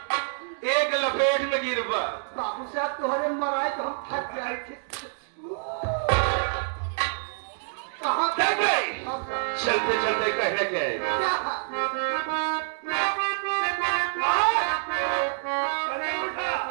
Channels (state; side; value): silent; left; digital silence